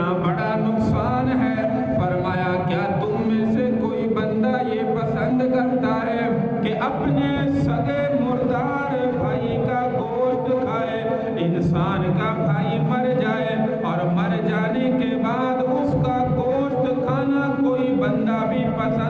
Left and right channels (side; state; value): both; identical; correlation 1.00